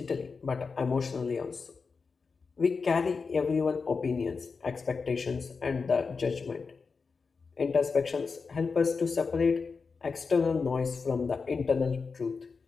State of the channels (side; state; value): right; quieter; 4.9 dB